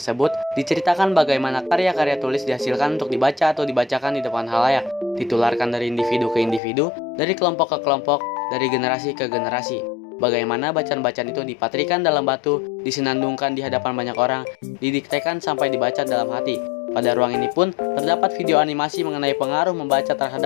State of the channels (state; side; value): drops out; right; at 6.6 s